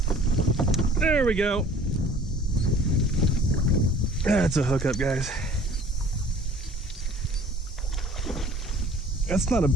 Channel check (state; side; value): normal; both; correlation 0.50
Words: There we go. That's a hookup, guys. That's not a